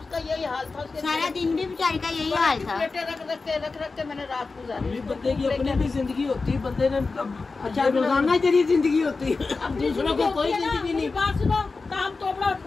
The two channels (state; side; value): quieter; right; 4.0 dB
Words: उसका यही हाल था, सारा दिन भी बेचारी का यही हाल था। रख के मैंने रात गुजारी। बंदे की अपनी भी जिंदगी होती है, बंदे ने अच्छा रोजाना तेरी जिंदगी होती है, अब दूसरों को कोई जिंदगी नहीं। बात सुनो, काम तो अपना